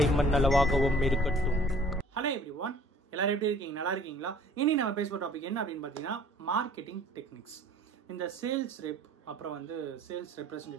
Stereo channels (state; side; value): normal; both; correlation 0.52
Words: அளவாகவும் இருக்கட்டும். Hello everyone, எல்லாரும் எப்படி இருக்கீங்க? நல்லா இருக்கீங்களா? இனி நம்ம பேச போகிற டாபிக் என்ன அப்படின்னு பார்த்தீங்கன்னா மார்க்கெட்டிங் டெக்னிக்ஸ். இந்த சேல்ஸ் ரெப், அப்புறம் வந்து சேல்ஸ்